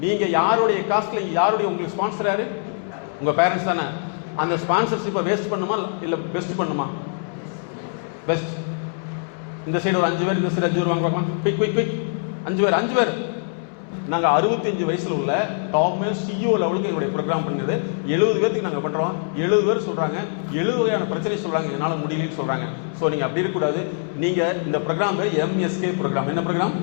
நீங்க யாருடைய காஸ்ட்ல, யாருடைய உங்களுக்கு ஸ்பான்சர் யாரு? உங்க பேரண்ட்ஸ் தானே. அந்த ஸ்பான்சர்ஷிப்பை வேஸ்ட் பண்ணுமா இல்ல பெஸ்ட் பண்ணுமா? பெஸ்ட். இந்த சைடு ஒரு 5 பேர், இந்த சைடு 5 பேர் வாங்க பார்க்கலாம். குயிக் 5 பேர் நாங்கள் 65 வயசில் உள்ள டாப்மே சிஇஓ லெவலுக்கு எங்களுடைய ப்ரோக்ராம் பண்ணியது 70 பேருக்கு நாங்கள் பண்ணுறோம். 70 பேர் சொல்கிறாங்க 70 வகையான பிரச்சனை சொல்கிறாங்க, என்னால் முடியலன்னு சொல்கிறாங்க. ஸோ நீங்கள் அப்படி இருக்கக்கூடாது. நீங்கள் இந்த ப்ரோக்ராம் பேர் எம்எஸ்கே ப்ரோக்ராம். என்ன ப்ரோக்ராம்?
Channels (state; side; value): silent; right; 62 dB below the other